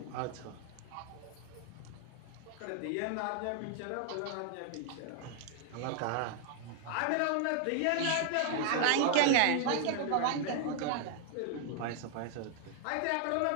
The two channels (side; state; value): both; different; correlation 0.00